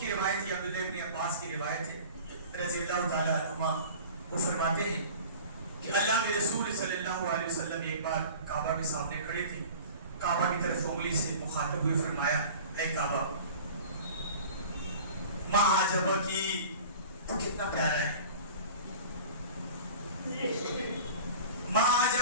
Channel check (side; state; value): both; inverted; correlation -0.40